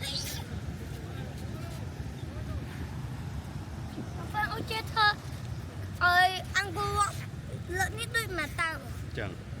ôi chết thơ ơi ăn cô lợn nhất đôi mà tao chẳng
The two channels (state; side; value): identical; both; correlation 1.00